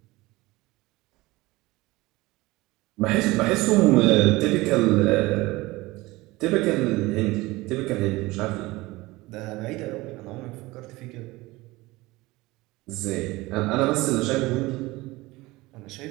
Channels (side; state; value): left; quieter; 20.6 dB